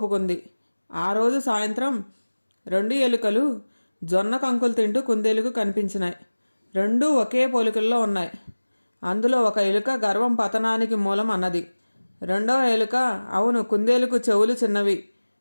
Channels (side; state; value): both; inverted; correlation -1.00